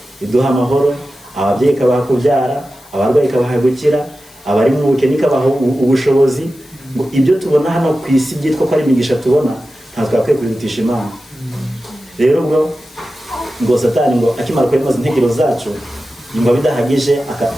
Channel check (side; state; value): left; noise; hiss, 25 dB below the sound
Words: iduha amahoro, ababyeyi ikabaha kubyara, abarwayi ikabaha gukira, abari mu bukene ikabaha ubushobozi. Ibyo tubona hano ku isi byitwa ko ari imigisha tubona, ntabwo twakwiye kubirutisha Imana. Rero ubwo ngo Satani ngo akimara kuremaza intekerezo zacu yumva bidahagije